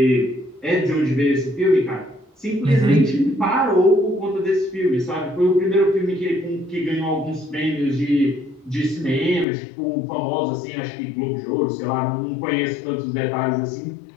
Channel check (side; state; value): right; drops out; at 9.5 s